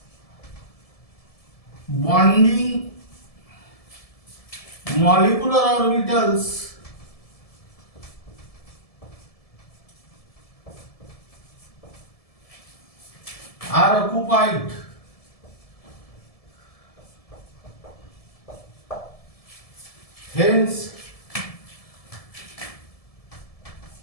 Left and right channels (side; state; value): right; late; 1.7 ms